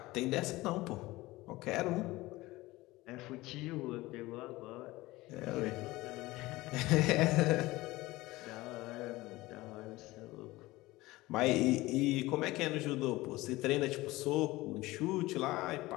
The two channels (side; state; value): right; quieter; 19.4 dB